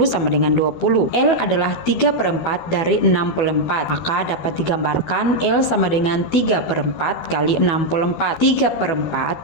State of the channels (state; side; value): late; right; 13 ms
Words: sama dengan 20. L adalah 3/4 dari 64, maka dapat digambarkan L sama dengan 3/4 kali 64.